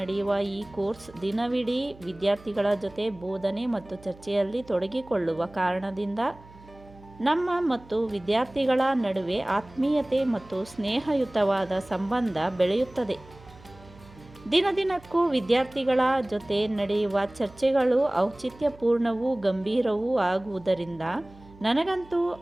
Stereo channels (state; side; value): noise; right; hum, 22 dB below the sound